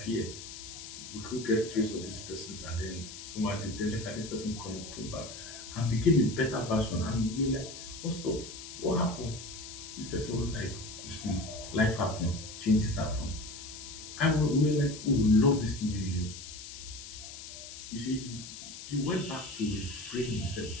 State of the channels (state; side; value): noise; left; hiss, 12 dB below the sound